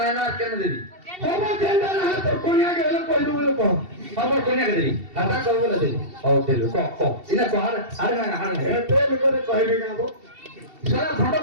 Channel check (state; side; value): late; left; 2.7 ms